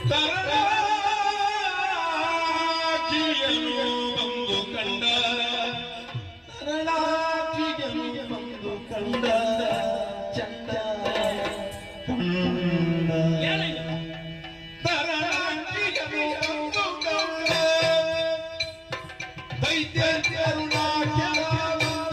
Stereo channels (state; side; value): identical; both; correlation 1.00